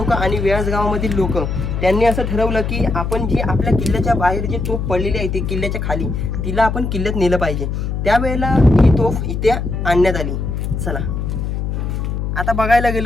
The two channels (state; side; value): noise; left; hum, 2 dB below the sound